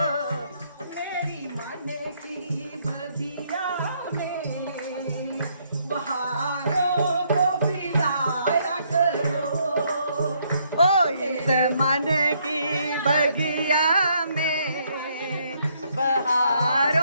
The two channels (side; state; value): both; inverted; correlation -0.71